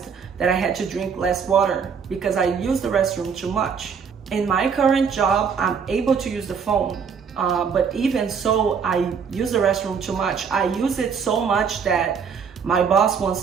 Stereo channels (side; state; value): left; quieter; 6.4 dB